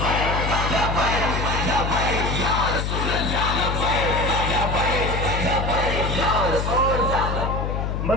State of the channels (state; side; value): noise; left; hum, 1 dB below the sound